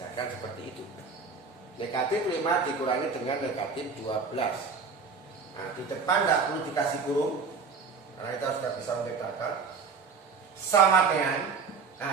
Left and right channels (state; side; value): quieter; left; 5.1 dB